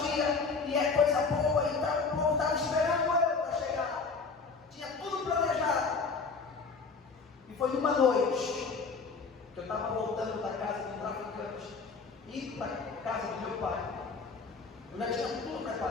e é coisa boa e tal. O povo estava esperando eu para chegar. Tinha tudo planejado. E foi numa noite que eu estava voltando da casa do traficante, indo para a casa do meu pai. Eu já tinha tudo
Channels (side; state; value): right; quieter; 4.6 dB